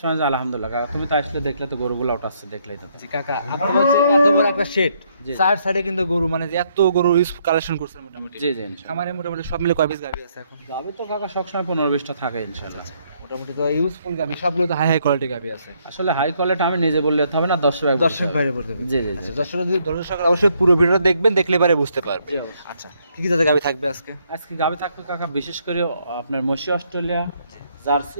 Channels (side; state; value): both; inverted; correlation -0.72